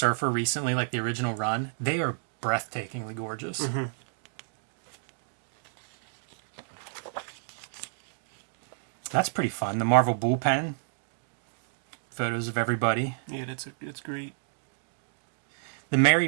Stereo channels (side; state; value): left; silent; 58 dB below the other